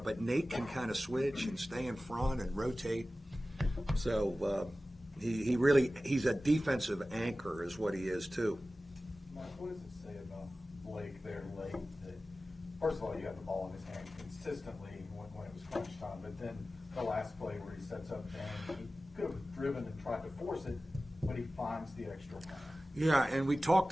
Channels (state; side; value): normal; both; correlation 0.96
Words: Nate can kind of switch and stay in front and rotate. So he's a defensive anchor is what he is too. Mike, what does it say about Blake there late? That first of all, you have the ball in his hand consistently when it was crunch time, but then the last play where he sets up and he could have driven and tried to force it, but he finds the extra man. Yeah, and we talked